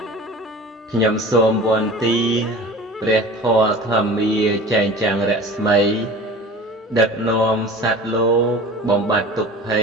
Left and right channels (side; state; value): both; normal; correlation 0.39